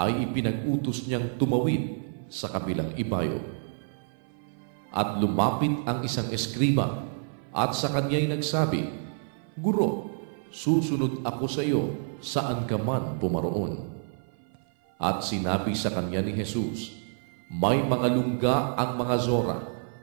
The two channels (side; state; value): left; silent; 56 dB below the other